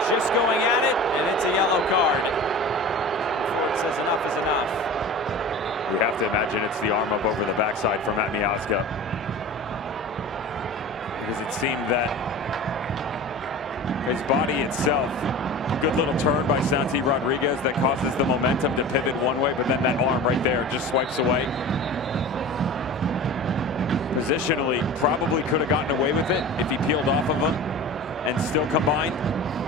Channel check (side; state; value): both; normal; correlation 0.35